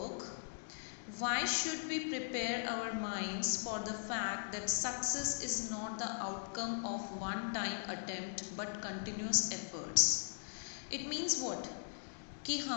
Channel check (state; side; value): silent; right; digital silence